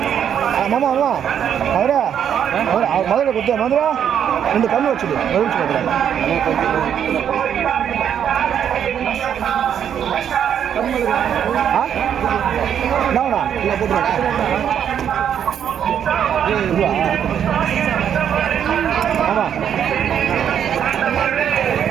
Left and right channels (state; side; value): quieter; left; 8.9 dB